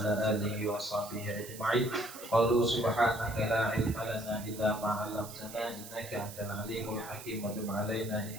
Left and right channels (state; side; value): noise; right; hiss, 14 dB below the sound